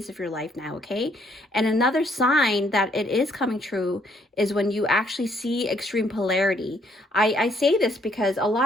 of your life now, okay? And another sign that it is coming true is when you actually see extreme polarity. I say this because a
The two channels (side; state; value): both; normal; correlation 0.68